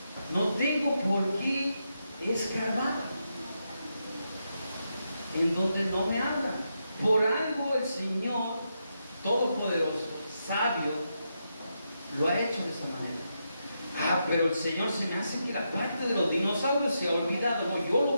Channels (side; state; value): both; inverted; correlation -0.84